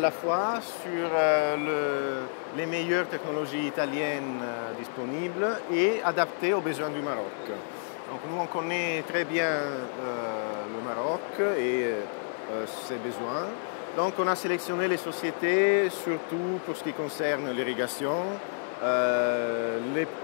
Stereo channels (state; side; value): silent; right; 58 dB below the other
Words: fois sur les meilleures technologies italiennes disponibles et adaptées aux besoins du Maroc. Donc nous, on connaît très bien le Maroc et ses besoins. Donc on a sélectionné les sociétés, surtout pour ce qui concerne l'irrigation, les